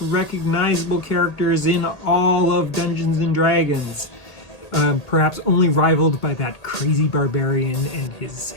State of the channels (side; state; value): right; late; 1.8 ms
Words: recognizable characters in all of Dungeons & Dragons, perhaps only rivaled by that crazy barbarian and his